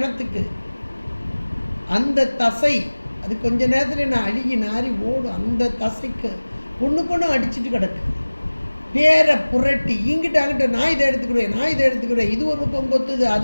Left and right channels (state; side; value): inverted; both; correlation -1.00